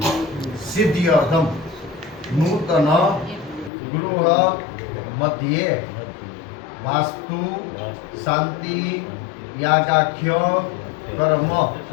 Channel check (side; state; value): right; drops out; at 3.7 s